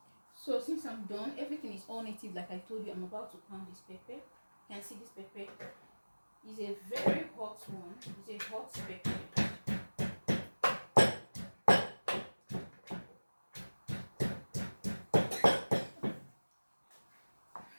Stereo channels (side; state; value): both; inverted; correlation -1.00